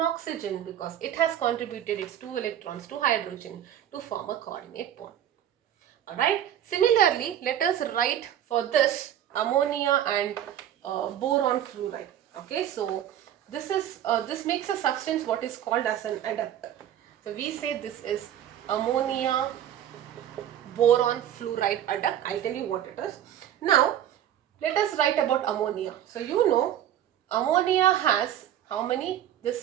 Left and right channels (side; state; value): left; quieter; 10.9 dB